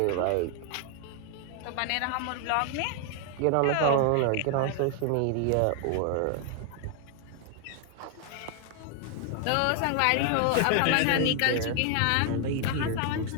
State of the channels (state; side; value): different; both; correlation 0.00